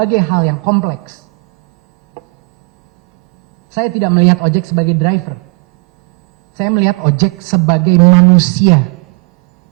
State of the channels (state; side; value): quieter; left; 31.2 dB